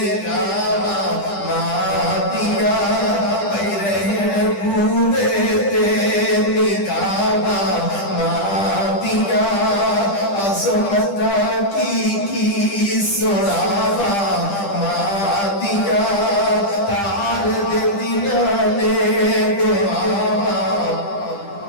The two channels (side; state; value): right; late; 10 ms